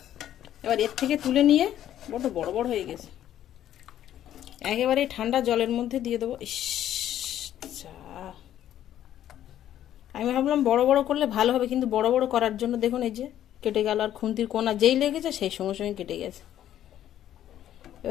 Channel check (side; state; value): right; quieter; 11.5 dB